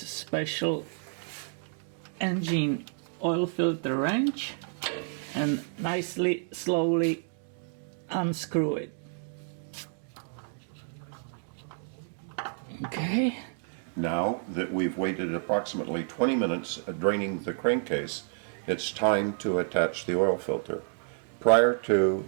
engine oil filter wrench and nicely, slowly unscrew it. Okay. Now that we've waited approximately 20 minutes draining the crankcase, it's time to attach the oil filter. Prior to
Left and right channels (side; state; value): left; silent; digital silence